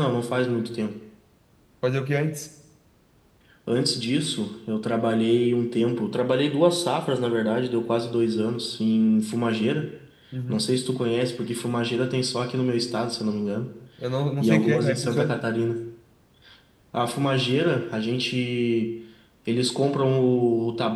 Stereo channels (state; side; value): identical; both; correlation 1.00